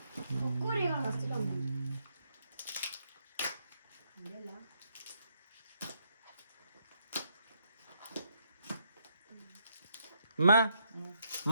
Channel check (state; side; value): inverted; both; correlation -0.76